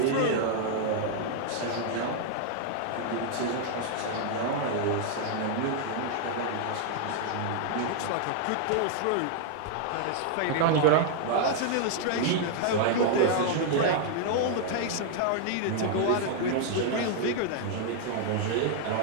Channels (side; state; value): both; different; correlation 0.00